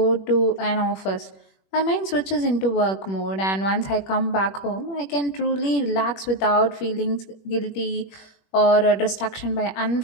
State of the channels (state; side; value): late; right; 21 ms